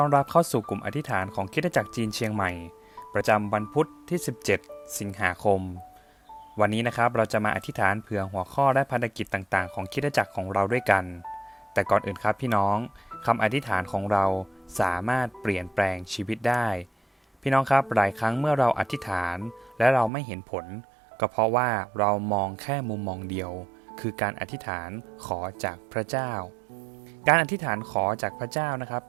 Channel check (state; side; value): drops out; left; at 20.1 s